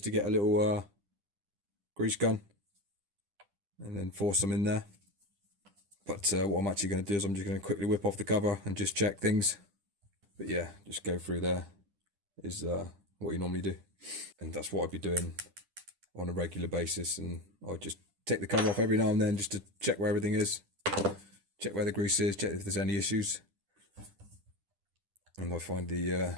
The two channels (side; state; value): left; late; 10 ms